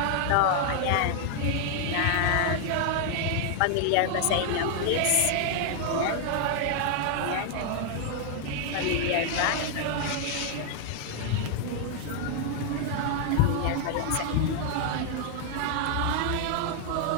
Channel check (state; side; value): different; both; correlation 0.00